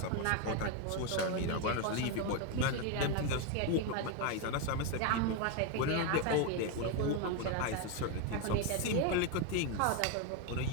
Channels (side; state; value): both; different; correlation 0.02